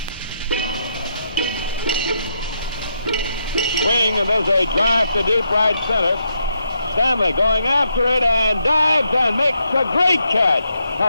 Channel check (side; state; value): both; inverted; correlation -0.80